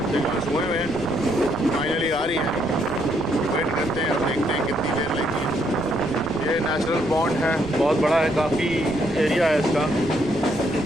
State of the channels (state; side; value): noise; right; rumble, 14 dB below the sound